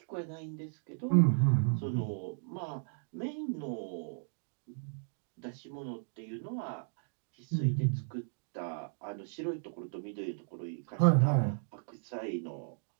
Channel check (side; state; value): left; silent; digital silence